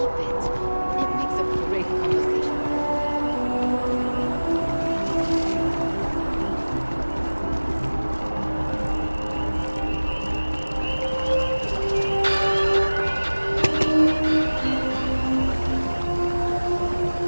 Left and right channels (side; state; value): both; inverted; correlation -1.00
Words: it. It makes a great conversation.